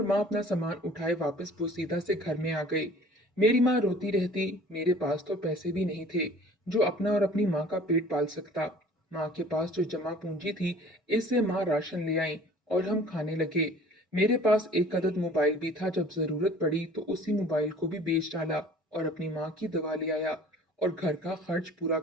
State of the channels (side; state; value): both; normal; correlation 0.49